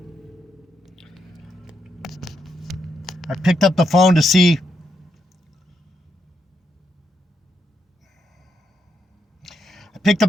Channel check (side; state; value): both; normal; correlation 0.80